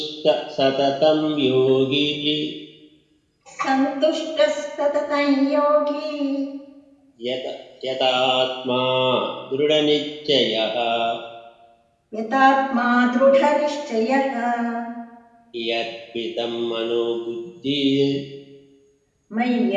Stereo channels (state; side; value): identical; both; correlation 1.00